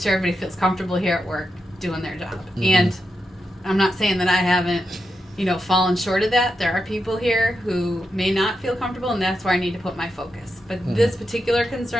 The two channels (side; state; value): both; normal; correlation 0.87